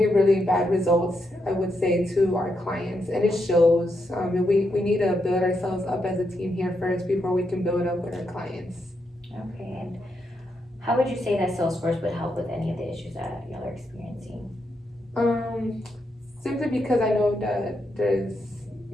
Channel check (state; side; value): normal; both; correlation 0.82